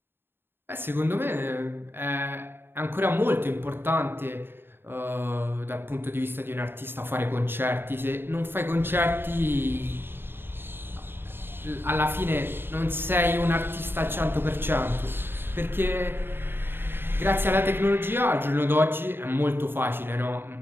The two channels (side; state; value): left; late; 0.10 ms